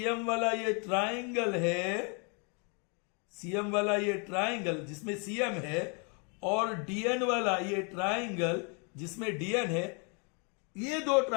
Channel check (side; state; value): right; quieter; 35.9 dB